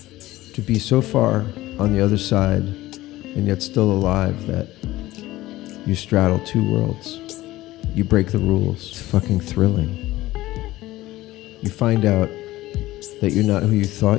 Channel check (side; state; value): right; quieter; 17.1 dB